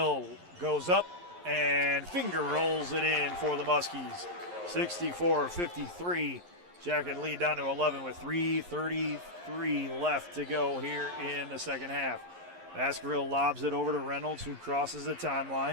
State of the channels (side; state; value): left; late; 11 ms